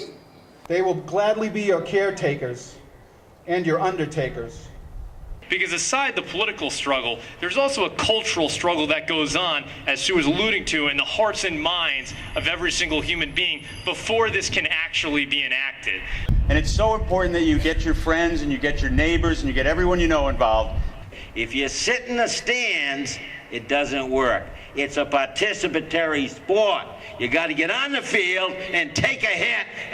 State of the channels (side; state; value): both; identical; correlation 1.00